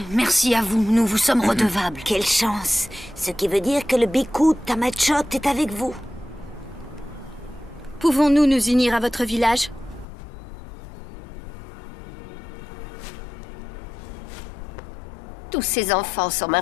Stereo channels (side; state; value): right; drops out; at 10.1 s